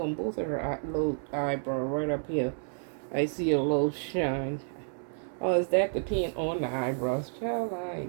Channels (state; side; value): silent; left; 58 dB below the other